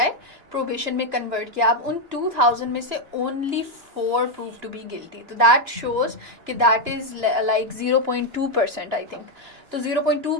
प्रोबेशन में कन्वर्ट किया. अब उन 2000 में से only 4 prove to be guilty. तो दैट शोज कि that is like 0.2% I think. तो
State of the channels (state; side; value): late; left; 2.9 ms